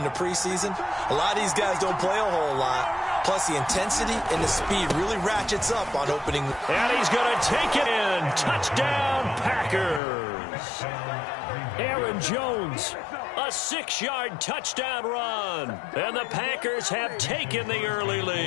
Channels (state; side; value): drops out; right; at 10.0 s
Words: the preseason, a lot of these guys don't play a whole lot. Plus, the intensity and the speed really ratchets up on opening. And he's going to take it in. Touchdown, Packers. Aaron Jones, a 6-yard touchdown run. And the Packers have taken the early